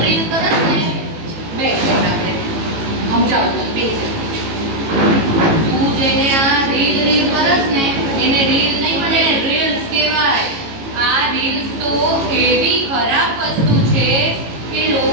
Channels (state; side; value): late; left; 18 ms